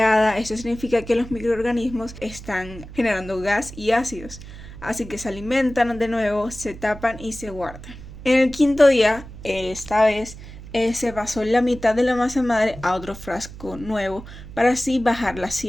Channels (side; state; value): right; noise; hum, 14 dB below the sound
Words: Esto significa que los microorganismos están generando gas y ácidos, así que se alimentan de nuevo, se tapan y se guardan. En el quinto día, esta vez, se pasó la mitad de la masa madre a otro frasco nuevo para así bajar la